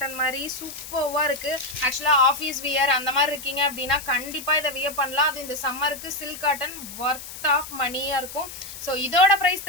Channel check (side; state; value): left; noise; hiss, 12 dB below the sound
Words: மாதிரி சூப்பர்வா இருக்கு. ஆக்சுவலா ஆஃபீஸ் வியர் அந்த மாதிரி இருக்கீங்க அப்படின்னா கண்டிப்பா இதை வியர் பண்ணலாம். அது இந்த சம்மருக்கு சில்க் காட்டன் ஒர்த் ஆஃப் மணியா இருக்கும். ஸோ இதோட ப்ரைஸ்